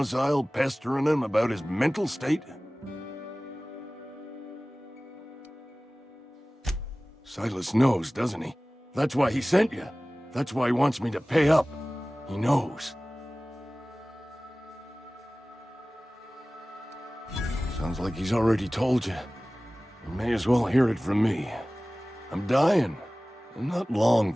pestering him about his mental state? Silas knows, doesn't he? That's why he sent you. That's why he wants me to pay up. He knows. Sounds like he's already told you. You may as well hear it from me. I'm dying. I'm not long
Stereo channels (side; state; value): both; normal; correlation 0.98